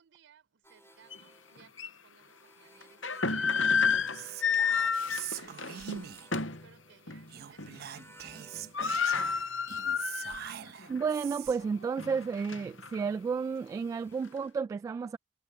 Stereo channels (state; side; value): normal; both; correlation 0.61